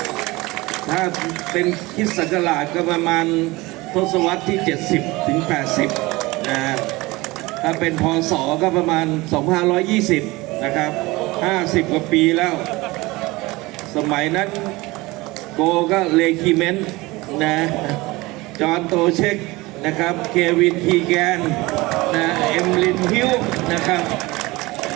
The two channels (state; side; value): quieter; left; 21.7 dB